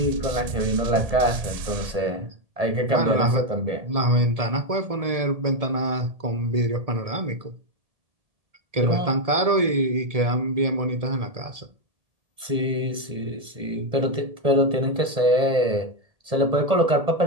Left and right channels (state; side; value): late; left; 1.7 ms